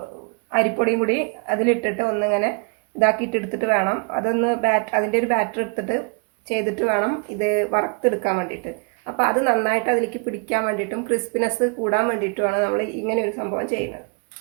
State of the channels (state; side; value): quieter; left; 34.1 dB